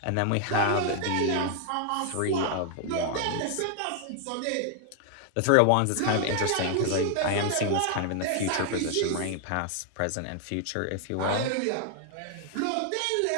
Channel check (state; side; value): different; both; correlation 0.00